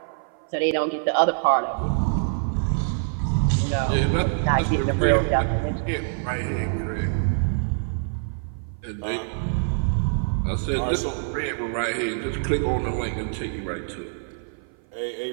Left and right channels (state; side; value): silent; left; 56 dB below the other